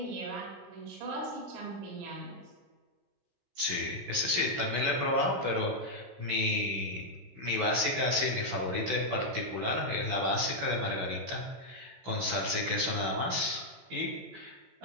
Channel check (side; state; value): left; late; 16 ms